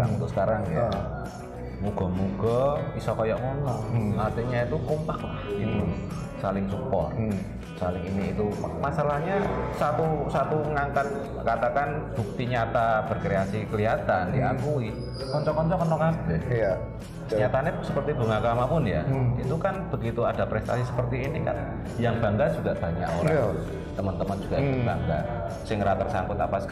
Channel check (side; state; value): both; identical; correlation 1.00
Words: untuk sekarang ya. Moga-moga bisa kayak ngono. Artinya itu kompak lah gitu. Saling support. Saling ini itu. Masalahnya satu ngangkat katakan bukti nyata berkreasi kelihatan diakui. Konco-konco kena kabeh. Iya. Nyatanya seperti Bunga Kama pun ya. Itu kan begitu ada prestasi seperti ini kan yang bangga juga banyak orang. Teman-teman juga bangga. Sing ra tersangkut apa